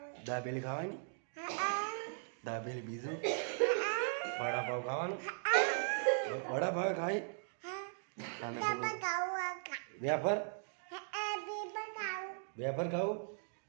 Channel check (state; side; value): silent; left; digital silence